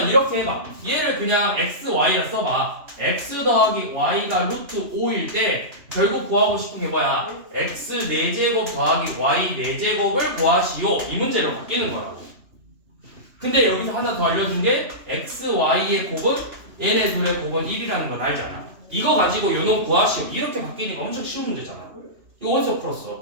이렇게 해봐. 얘를 그냥 x, y라 써봐. x 더하기 y가 루트 5일 때 결국 구하고 싶은 게 뭐야? x 4제곱 더하기 y 4제곱을 구하시오, 이 문제로 바뀌는 거라고. 근데 여기서 하나 더 알려준 게 x, y의 곱은 얘네 둘의 곱은 1이라는 건 알잖아. 이거 가지고 요놈 구하시오, 이렇게 바뀌니까 엄청 쉬운 문제잖아. 이거 어디서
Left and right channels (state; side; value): late; left; 2.9 ms